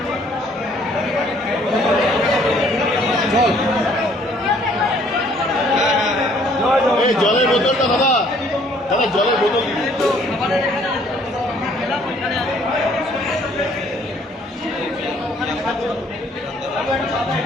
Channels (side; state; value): both; normal; correlation 0.61